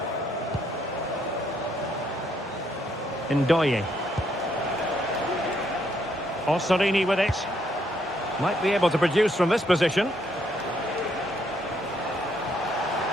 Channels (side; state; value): both; normal; correlation 0.72